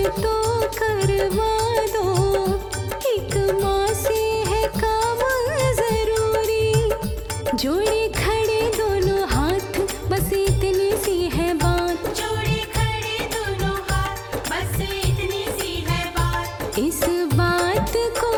तो करवा दो, एक माँ से है काम जरूरी। जोड़े खड़े दोनों हाथ, बस इतनी सी है बात। जोड़े खड़े दोनों हाथ, बस इतनी सी है बात। इस बात को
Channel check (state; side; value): identical; both; correlation 1.00